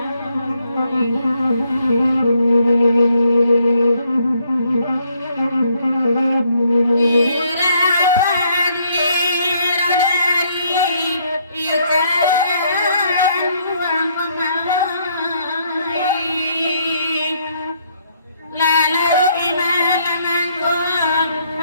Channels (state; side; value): inverted; both; correlation -0.70